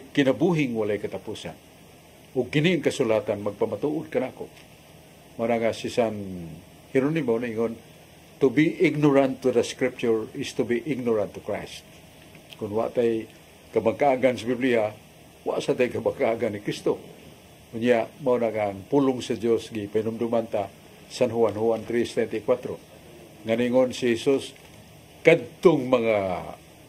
kinabuhing walay katapusan. Ug kini ang kasulatan magpamatuod kanako. Mara nga si San Hieronimo ningon, to be ignorant to the Scripture is to be ignorant to Christ. Kung wa tay kabangkaagan sa Biblia, wa sa tay kabangkaagan ni Kristo. Unya mao na nga ang pulong sa Dios gi pinumduman ta San Juan 3:34. Nganingon si Jesus, kadtong mga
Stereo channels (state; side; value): identical; both; correlation 1.00